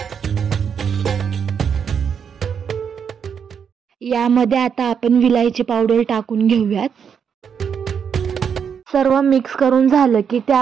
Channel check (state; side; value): quieter; left; 7.2 dB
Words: यामध्ये आता आपण विलायची पावडर टाकून घेऊयात. सर्व मिक्स करून झालं की